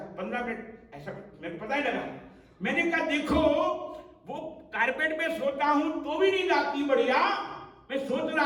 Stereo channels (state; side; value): identical; both; correlation 1.00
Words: 15 मिनट ऐसा मेरे को पता ही लगा। मैंने कहा देखो वो कारपेट पे सोता हूं तो भी नींद आती बढ़िया। मैं सोच